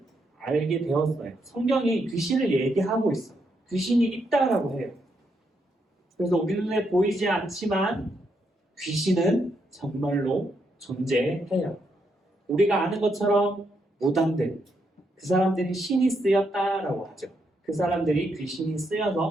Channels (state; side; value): normal; both; correlation 0.79